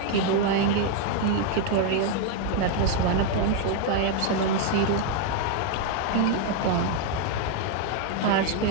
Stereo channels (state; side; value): different; both; correlation 0.00